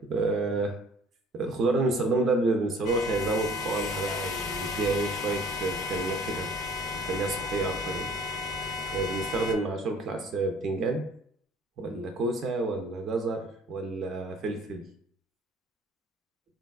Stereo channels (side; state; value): both; normal; correlation 0.52